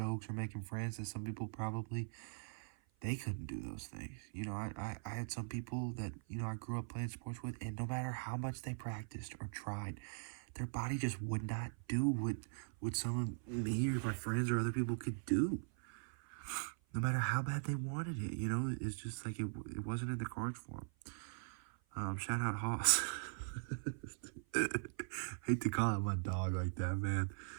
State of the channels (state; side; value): silent; left; 50 dB below the other